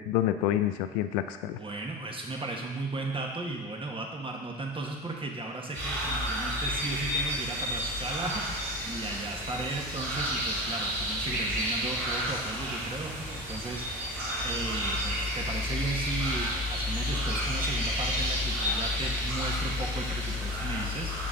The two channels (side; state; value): both; normal; correlation 0.29